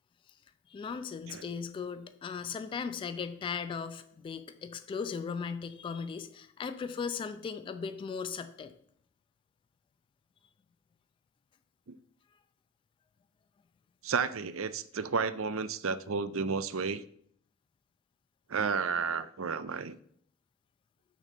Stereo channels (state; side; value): normal; both; correlation 0.14